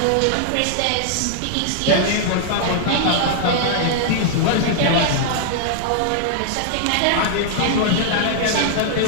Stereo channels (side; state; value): both; different; correlation -0.01